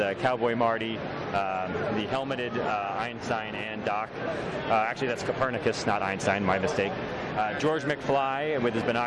Cowboy Marty, the helmeted Einstein and Doc. Actually, that's Copernicus, not Einstein, my mistake. George McFly with his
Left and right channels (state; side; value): identical; both; correlation 1.00